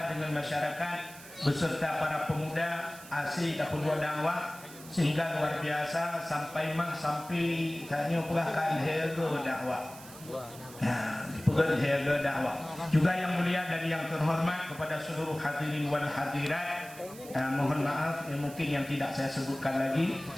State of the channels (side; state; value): right; noise; hiss, 17 dB below the sound